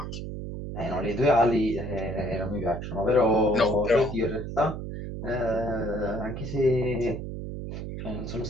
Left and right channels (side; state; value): right; noise; hum, 7 dB below the sound